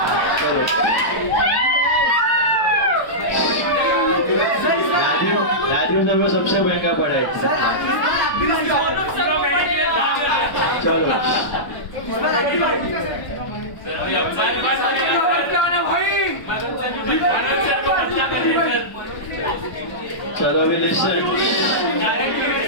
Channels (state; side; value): late; right; 1.0 ms